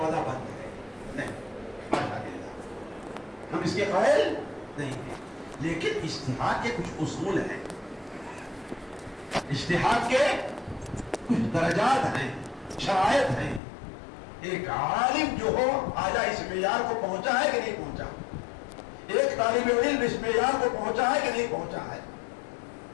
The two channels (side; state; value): right; drops out; at 13.6 s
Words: بند ہے، نہیں، ہم اس کے قائل نہیں ہیں، لیکن اجتہاد کے کچھ اصول ہیں، اجتہاد کے کچھ درجات ہیں، شرائط ہیں. ایک عالم جو ہو آیا اس معیار کو پہنچا ہے کہ نہیں پہنچا، ایک طالب علم اس معیار کو پہنچا ہے کہ نہیں پہنچا ہے.